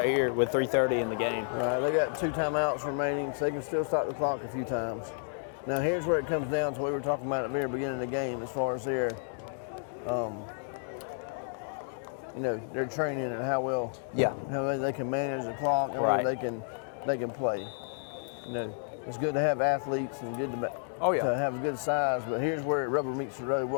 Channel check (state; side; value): silent; right; digital silence